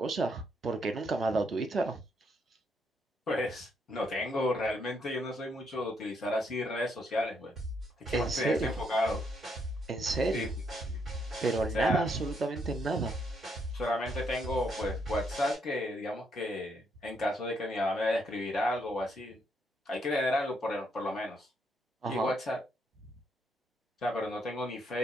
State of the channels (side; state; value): both; normal; correlation 0.74